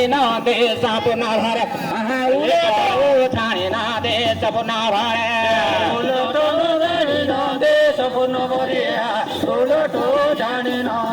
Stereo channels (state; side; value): identical; both; correlation 1.00